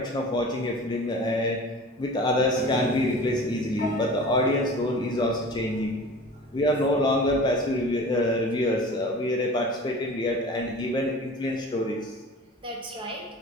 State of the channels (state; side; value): normal; both; correlation 0.39